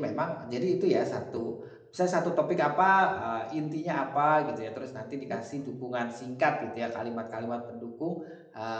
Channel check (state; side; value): identical; both; correlation 1.00